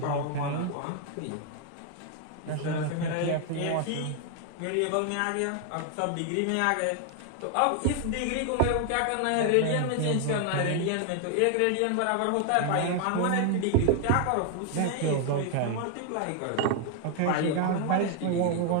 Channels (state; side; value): different; both; correlation 0.00